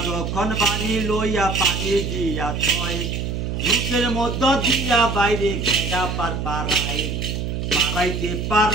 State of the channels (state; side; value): noise; right; hum, 3 dB below the sound